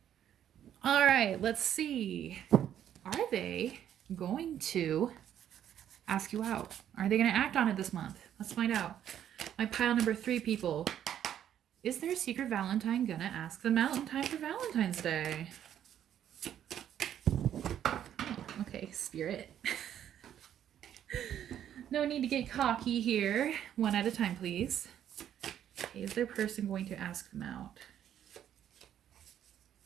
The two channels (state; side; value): quieter; left; 10.3 dB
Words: All right, let's see. Are they going to ask you out? Are they going to act on it this month? Let's find out. My pile number 3 people. Is their secret Valentine gonna ask them out in time for Valentine's Day? Oh, okay, Spirit. No need to get cocky here. One at a time, please. Okay, is their person going to ask them out